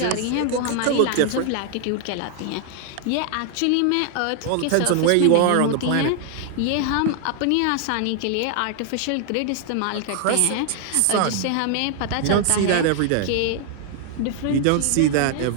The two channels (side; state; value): both; different; correlation 0.00